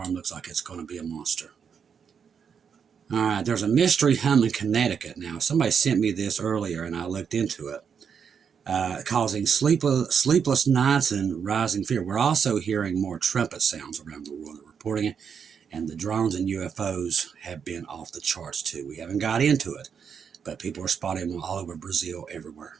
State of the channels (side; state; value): left; quieter; 6.9 dB